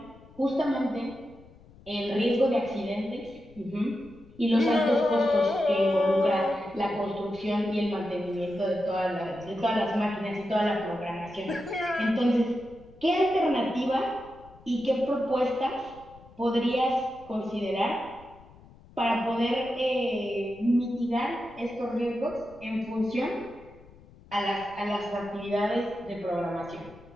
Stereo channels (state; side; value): noise; left; rumble, 23 dB below the sound